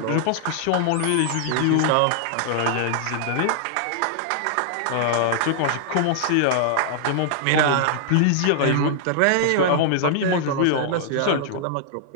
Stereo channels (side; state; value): both; different; correlation -0.01